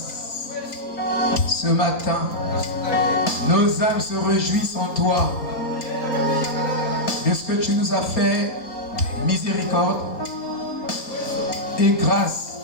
Ce matin, nos âmes se réjouissent en toi de ce que tu nous as fait, miséricorde et grâce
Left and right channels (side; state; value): right; late; 4.3 ms